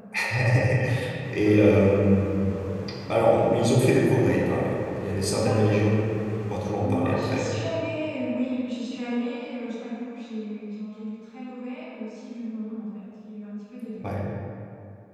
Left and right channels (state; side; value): identical; both; correlation 1.00